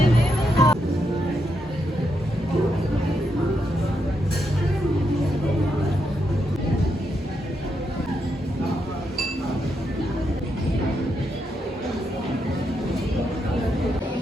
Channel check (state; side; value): normal; both; correlation 0.82